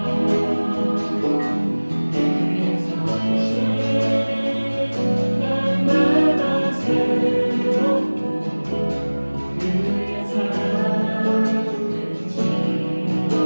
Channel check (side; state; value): both; inverted; correlation -1.00